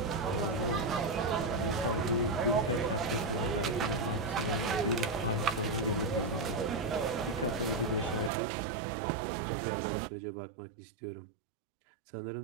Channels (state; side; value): drops out; left; at 8.3 s